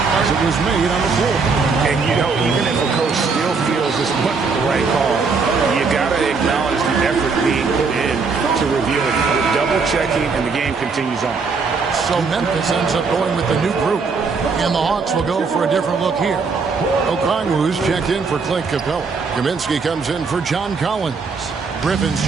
as it was made on the floor. And, you know, even if a coach still feels this wasn't the right call, you got to acknowledge the effort being put in to review it. Double-checking, and the game continues on. So Memphis ends up going with the new group. And the Hawks will go for a different look here. Okongwu's checked in for Clint Capella. Kaminsky comes in for John Collins. Griffin's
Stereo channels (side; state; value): left; quieter; 4.8 dB